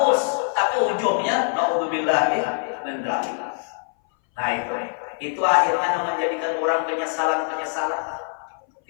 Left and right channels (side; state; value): right; silent; 60 dB below the other